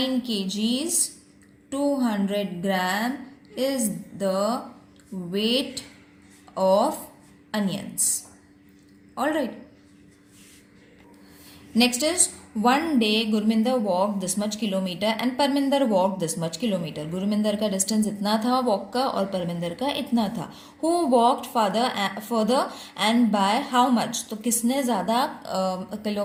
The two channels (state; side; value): identical; both; correlation 1.00